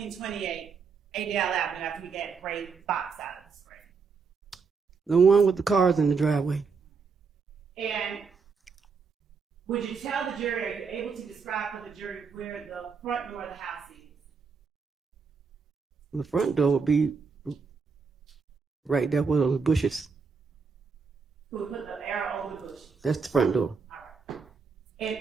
Adele Avenue after we get gray box out of the screen? The one with the cars in the driveway. And would you tell the jury, are you able to describe for the jury where the front door of the house is? The front door would be right there where those bushes. Who put the arrow over the bushes? That's the front door. All right. And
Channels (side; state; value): left; quieter; 5.2 dB